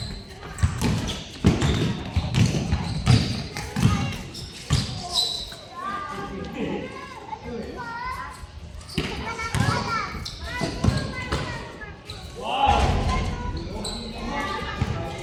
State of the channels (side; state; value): both; identical; correlation 1.00